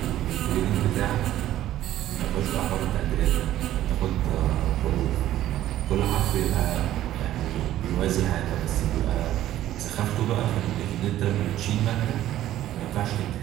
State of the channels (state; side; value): quieter; left; 13.2 dB